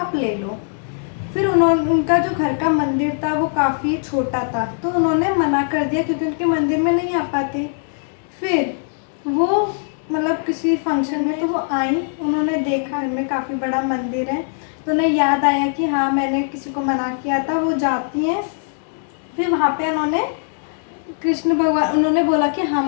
ले लो। फिर उनका जो घर का मंदिर था वो काफ़ी छोटा था, तो उन्होंने मना कर दिया क्योंकि उनके मंदिर में नहीं आ पाते। फिर वो मतलब किसी फंक्शन में तो वो आई, उन्होंने देखा इनमें काफ़ी बड़ा मंदिर है, तो उन्हें याद आया कि हाँ मैंने किसी को मना किया था। वो जाती हैं, फिर वहाँ पे उन्होंने कृष्ण भगवान उन्होंने बोला कि हाँ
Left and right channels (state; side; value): silent; right; 65 dB below the other